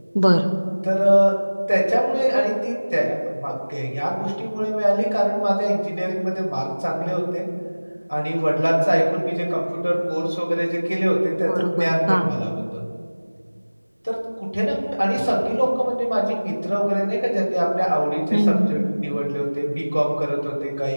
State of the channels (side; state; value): both; inverted; correlation -1.00